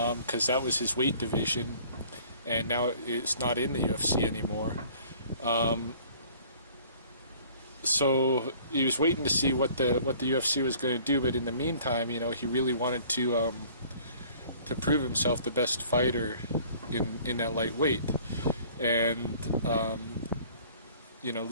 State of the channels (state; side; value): inverted; both; correlation -0.53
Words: that was his weight division, and now it's not in the UFC anymore. So he was waiting to see what the UFC was going to do, but in the meantime, he really wanted to prove himself the best fighter in that lightweight. And